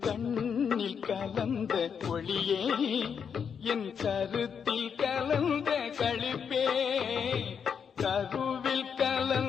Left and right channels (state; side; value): quieter; right; 7.0 dB